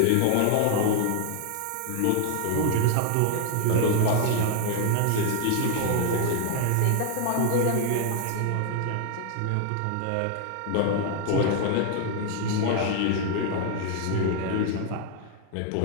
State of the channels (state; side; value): different; both; correlation 0.00